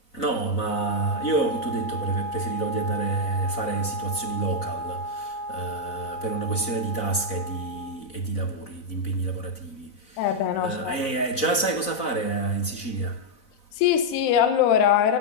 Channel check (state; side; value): late; right; 4.0 ms